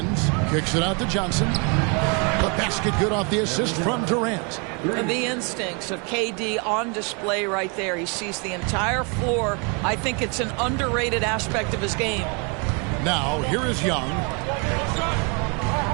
Kicks it out to Johnson. The basket good off the assist from Durant. And the instincts of KD on display right there. He sees the entire floor. I think it's an underrated aspect of his game. Now, here is Young.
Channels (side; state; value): left; quieter; 33.8 dB